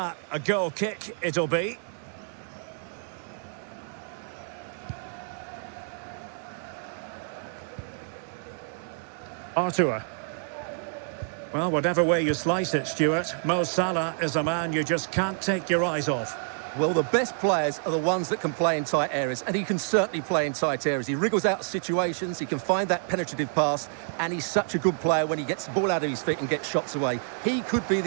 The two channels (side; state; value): left; silent; digital silence